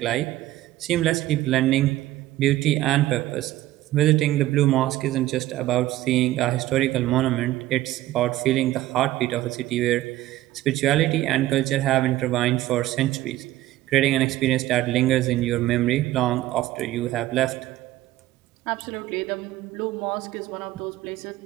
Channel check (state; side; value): quieter; left; 15.5 dB